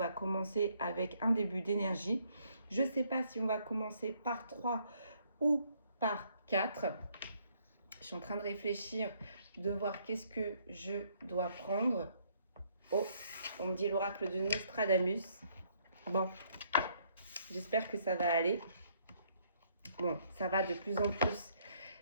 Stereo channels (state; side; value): inverted; both; correlation -0.68